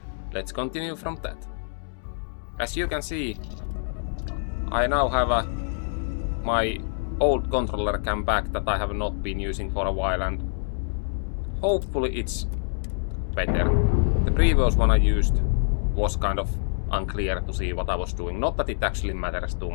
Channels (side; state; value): right; silent; 61 dB below the other